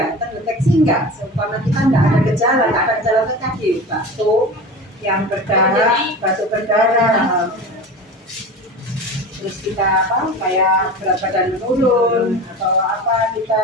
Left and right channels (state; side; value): normal; both; correlation 0.32